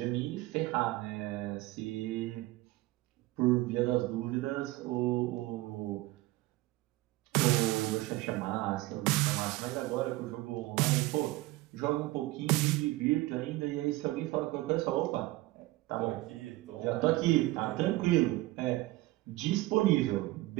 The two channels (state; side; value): quieter; left; 19.1 dB